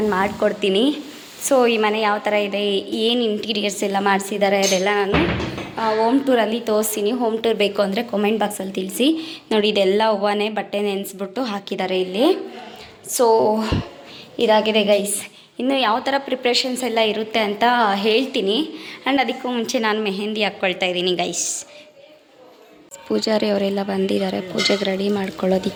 ಮಾಡಿಕೊಡ್ತೀನಿ. ಸೊ ಈ ಮನೆ ಯಾವ ಥರ ಇದೆ, ಏನು ಇಂಟೀರಿಯರ್ಸ್ ಎಲ್ಲ ಮಾಡಿಸಿದ್ದಾರೆ ಅದೆಲ್ಲ ನಾನು ಹೋಮ್ ಟೂರಲ್ಲಿ ತೋರಿಸ್ತೀನಿ. ಹೋಮ್ ಟೂರ್ ಬೇಕು ಅಂದರೆ ಕಾಮೆಂಟ್ ಬಾಕ್ಸಲ್ಲಿ ತಿಳಿಸಿ. ನೋಡಿ ಇದೆಲ್ಲ ಹೂವನೇ ಬಟ್ಟೆ ನೆನೆಸ್ಬಿಟ್ಟು ಹಾಕಿದ್ದಾರೆ ಇಲ್ಲಿ. ಸೊ ಇದಾಗಿದೆ ಗೈಸ್. ಇನ್ನು ಯಾವ ಥರ ಪ್ರಿಪ್ರೇಷನ್ಸ್ ಎಲ್ಲ ಇರುತ್ತೆ ಅಂತ ಹೇಳ್ತೀನಿ. ಆ್ಯಂಡ್ ಅದಕ್ಕೂ ಮುಂಚೆ ನಾನು ಮೆಹಂದಿ ಹಾಕ್ಕೊಳ್ತಾ ಇದ್ದೀನಿ ಗೈಸ್. ಪೂಜಾರಿ ಅವರೆಲ್ಲ ಬಂದಿದ್ದಾರೆ ಪೂಜೆಗೆ ರೆಡಿ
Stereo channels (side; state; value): both; identical; correlation 1.00